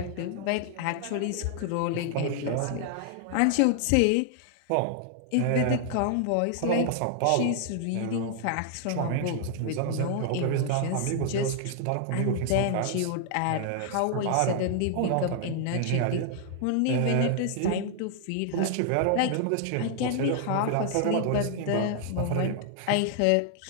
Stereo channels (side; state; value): both; different; correlation 0.00